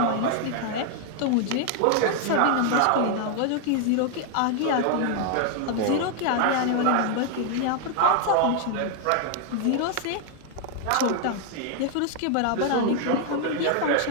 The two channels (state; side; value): different; both; correlation 0.00